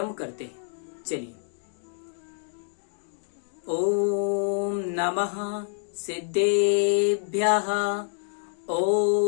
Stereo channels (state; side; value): silent; right; digital silence